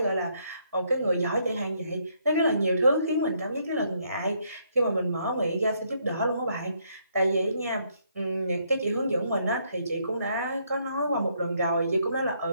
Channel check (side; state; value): both; inverted; correlation -0.72